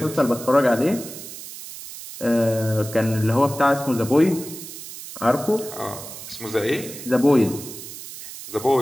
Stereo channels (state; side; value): noise; right; hiss, 12 dB below the sound